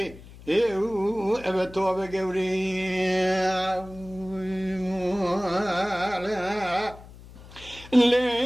ايو ابا توبا قوري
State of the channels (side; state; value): left; noise; hum, 19 dB below the sound